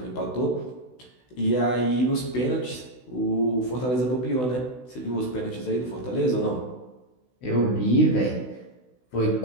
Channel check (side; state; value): right; late; 16 ms